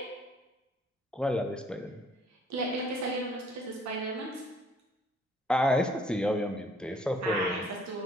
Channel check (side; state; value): both; normal; correlation 0.60